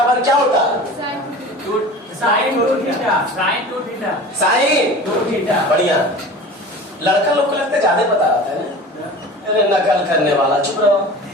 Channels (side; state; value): both; normal; correlation 0.37